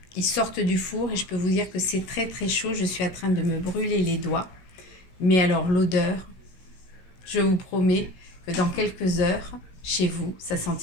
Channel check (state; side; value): late; right; 16 ms